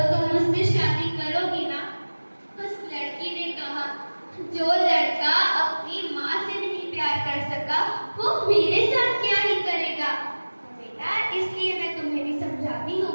तुम मुझसे शादी करोगी ना? उस लड़की ने कहा, जो लड़का अपनी माँ से नहीं प्यार कर सका वो मेरे साथ क्या ही करेगा। तो बेटा, इसलिए मैं तुम्हें भी समझाती हूँ,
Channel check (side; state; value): both; inverted; correlation -1.00